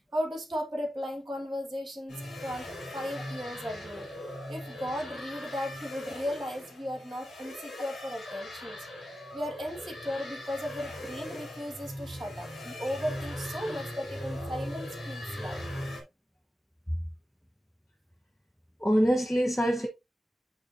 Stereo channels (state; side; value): normal; both; correlation 0.92